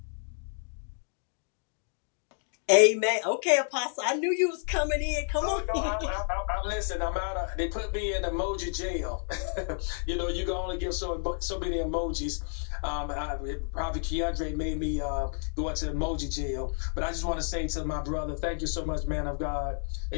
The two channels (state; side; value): silent; right; 58 dB below the other